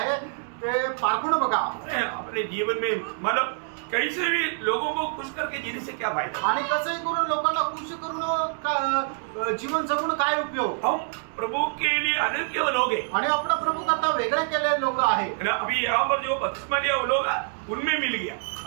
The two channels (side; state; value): left; silent; 61 dB below the other